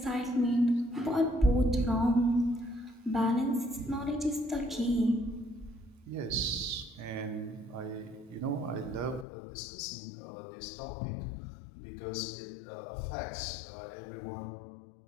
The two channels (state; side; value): drops out; right; at 9.2 s